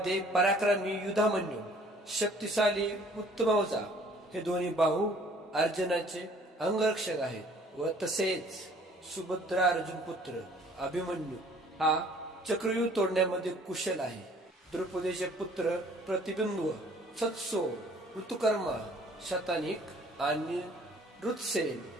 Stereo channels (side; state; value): both; normal; correlation 0.55